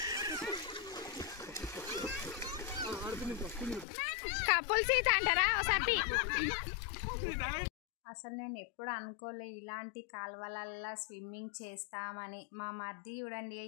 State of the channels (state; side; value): drops out; right; at 3.9 s